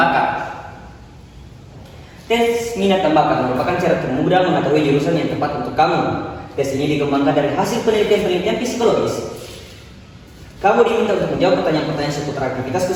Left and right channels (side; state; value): both; identical; correlation 1.00